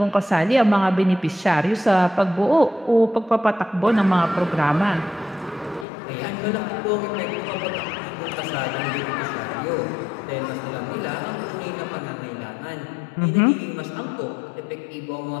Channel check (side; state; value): right; drops out; at 5.9 s